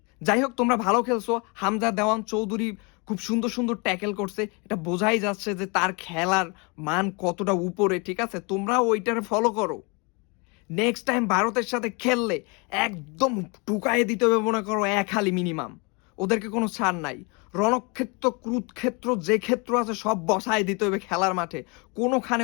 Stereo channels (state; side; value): quieter; right; 30.7 dB